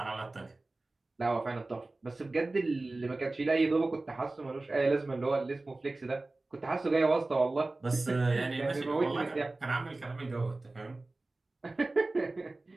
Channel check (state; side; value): quieter; left; 3.1 dB